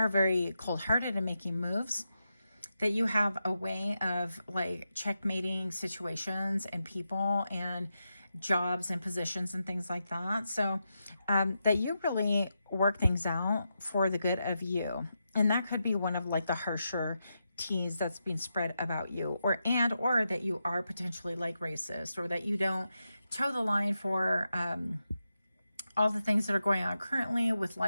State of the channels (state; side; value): inverted; both; correlation -0.87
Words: very cold-hearted in making moves, that you have a way of like checkmating situations and people and jobs and positions and things like that. So that you really work things out for the good of you. And that could be one of like the harsher T's that's being spread about you, or that you are potentially like racist, or that you don't toe the line for all the things that are going on currently with